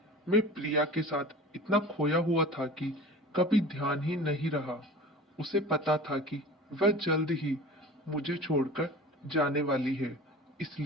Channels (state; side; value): normal; both; correlation 0.37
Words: मैं प्रिया के साथ इतना खोया हुआ था कि कभी ध्यान ही नहीं रहा। उसे पता था कि वह जल्द ही मुझे छोड़कर जाने वाली है,